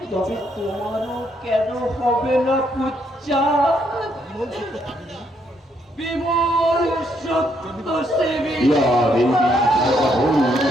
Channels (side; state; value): both; normal; correlation 0.73